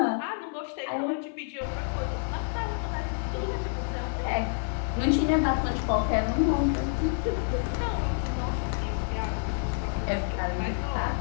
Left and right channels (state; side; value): silent; right; 59 dB below the other